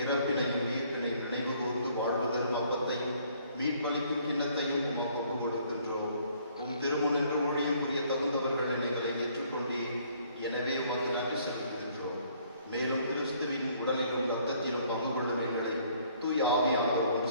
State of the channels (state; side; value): inverted; both; correlation -0.62